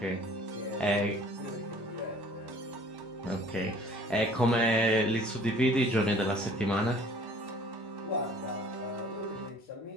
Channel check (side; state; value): both; normal; correlation 0.52